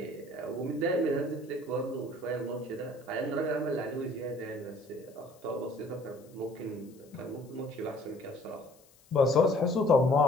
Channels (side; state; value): left; noise; hiss, 28 dB below the sound